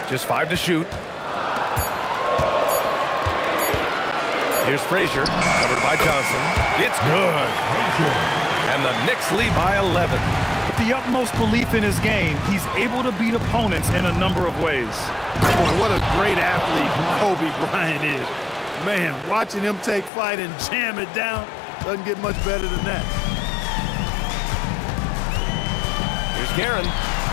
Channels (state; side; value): drops out; right; at 20.1 s